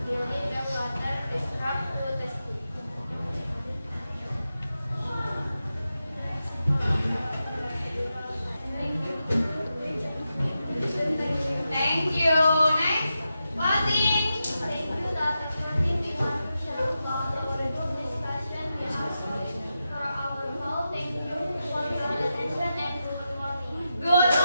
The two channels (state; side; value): inverted; both; correlation -0.90